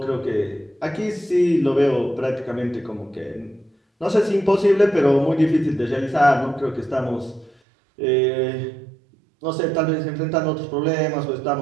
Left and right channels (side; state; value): left; drops out; at 7.6 s